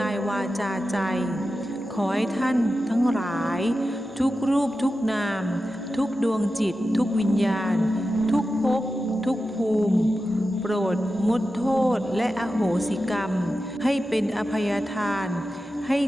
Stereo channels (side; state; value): both; normal; correlation 0.92